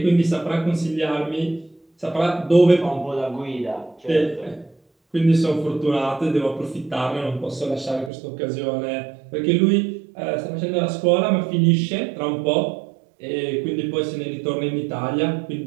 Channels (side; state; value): left; drops out; at 8.1 s